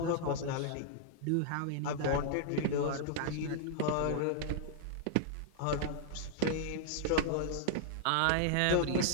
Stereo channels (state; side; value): different; both; correlation -0.01